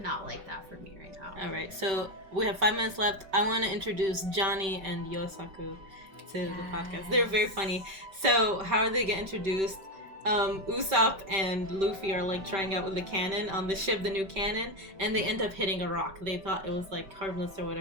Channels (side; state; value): left; late; 5.2 ms